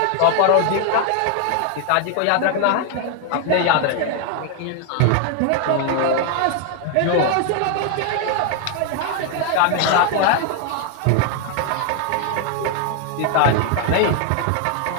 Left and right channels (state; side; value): different; both; correlation 0.00